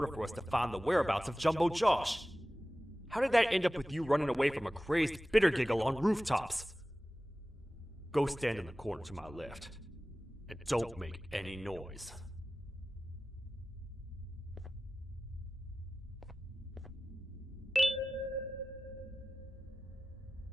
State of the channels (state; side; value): normal; both; correlation 0.96